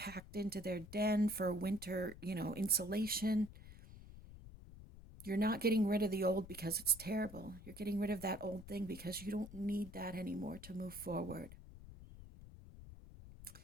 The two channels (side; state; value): left; noise; rumble, 16 dB below the sound